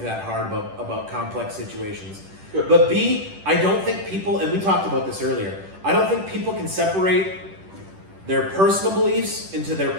that hard about complex situations. But B, I don't think people, and we talked about this earlier, I don't think people can separate their personal beliefs into their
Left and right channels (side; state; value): left; late; 10 ms